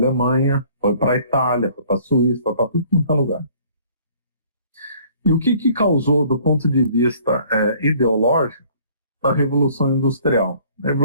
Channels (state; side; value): inverted; both; correlation -0.56